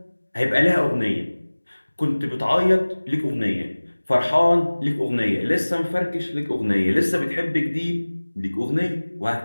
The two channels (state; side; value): inverted; both; correlation -1.00